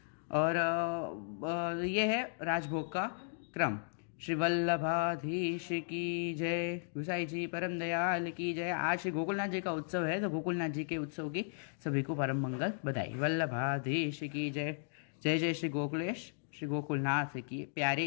और ये है राजभोग का क्रम। श्री वल्लभाधीश की जय, गुसाई जी परम दयाल की जय। आज श्री गोकुलनाथ जी का उत्सव है, तो गोकुलनाथ जी के उत्सव की सभी को परम मंगल बधाई। वल्लभाधीश की जय। जय जय श्री गोकुलेश, श्री गोकुलनाथ की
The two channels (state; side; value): silent; right; digital silence